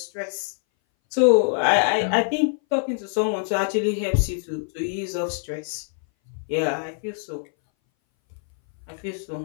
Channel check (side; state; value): right; silent; 60 dB below the other